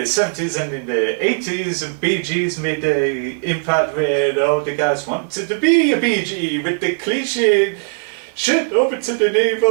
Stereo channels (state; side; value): silent; left; 67 dB below the other